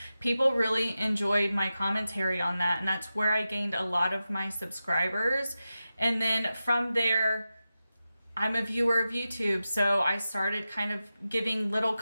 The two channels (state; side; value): inverted; both; correlation -0.92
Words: People really enjoyed my commentary on that, and that's where I gained a lot of my subscribers. And then from there, I'm a viewer of YouTube, so I started kind of giving little